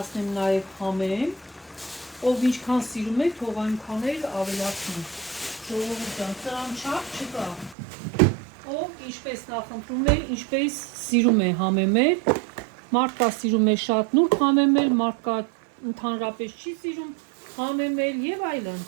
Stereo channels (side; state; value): left; drops out; at 7.8 s